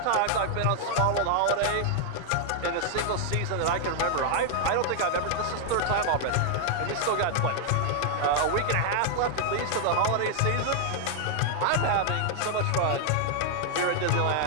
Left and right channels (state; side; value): different; both; correlation 0.00